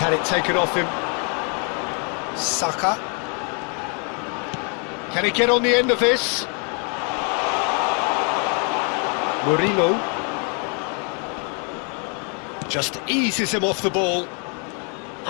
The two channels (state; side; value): quieter; right; 38.1 dB